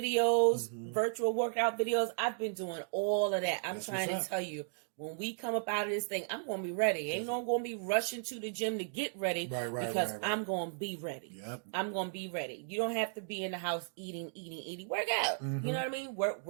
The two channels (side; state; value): left; silent; digital silence